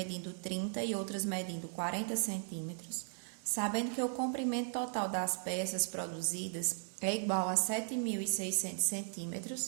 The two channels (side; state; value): left; silent; digital silence